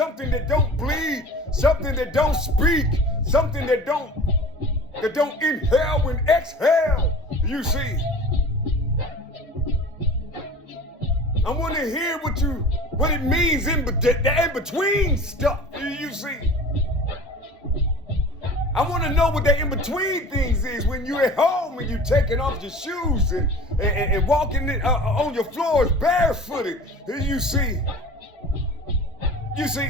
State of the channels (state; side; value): normal; both; correlation 0.41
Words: that don't bleed, something that don't speak, something that don't inhale and exhale. You see, I want to hear what it means the in-between stuff. You see, I want to know what the in-between things is when you're at home and you're taking off your shoes and walking on your floors barefooted. You see,